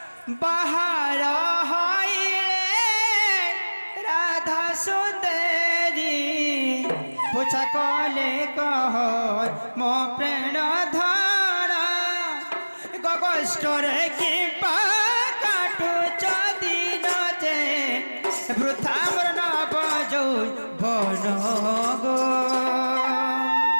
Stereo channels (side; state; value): both; inverted; correlation -1.00